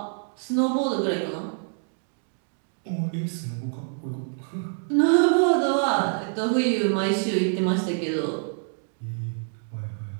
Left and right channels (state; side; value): silent; left; 61 dB below the other